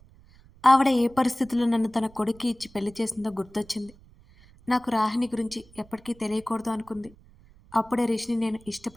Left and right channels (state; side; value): noise; right; rumble, 25 dB below the sound